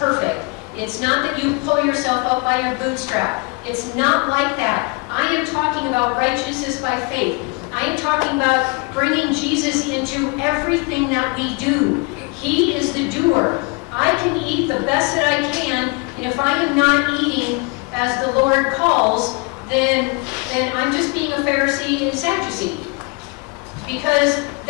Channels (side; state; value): right; quieter; 29.8 dB